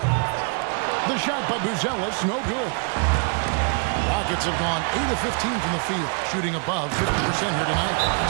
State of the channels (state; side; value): quieter; left; 39.0 dB